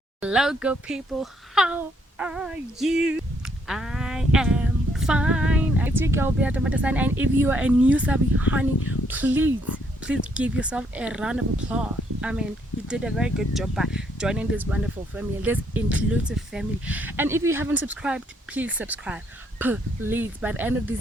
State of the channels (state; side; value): normal; both; correlation 0.70